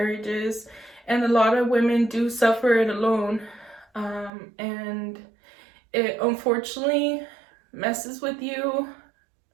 and a lot of women do suffer it alone. And it unfortunately messes with you,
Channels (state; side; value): drops out; left; at 4.3 s